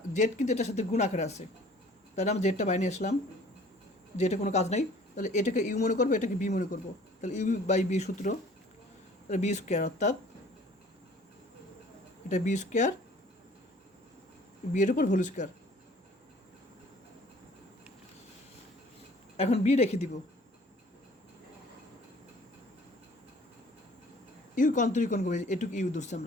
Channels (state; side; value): normal; both; correlation 0.52